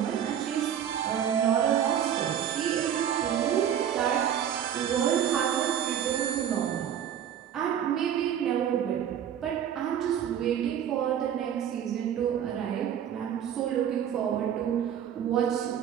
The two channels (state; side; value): quieter; left; 9.4 dB